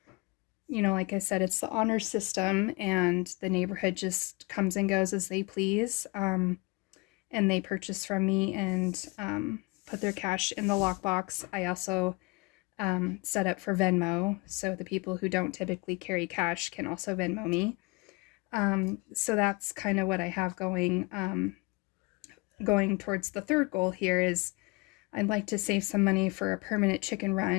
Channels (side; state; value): right; quieter; 26.3 dB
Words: like I said, it's the honor system, and the neighborhood just comes and goes as they please. And they purchase from me and put their cash in the lockbox. I also set up for Venmo, so the people who don't typically carry cash can also Venmo me. So that's kind of what I have going. Going towards the third goal here is I'd like to save some money for a permanent chicken